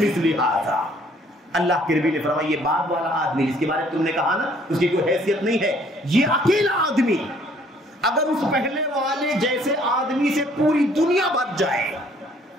ھذا. اللہ کے نبی نے فرمایا یہ بعد والا آدمی جس کے بارے میں تم نے کہا نا اس کی کوئی حیثیت نہیں ہے، یہ اکیلا آدمی اگر اس پہلے والے جیسے آدمی سے پوری دنیا بھر جائے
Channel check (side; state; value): both; normal; correlation 0.60